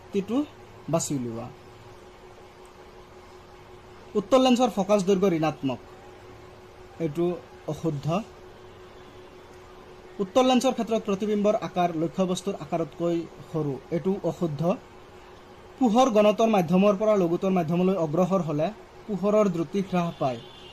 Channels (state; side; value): identical; both; correlation 1.00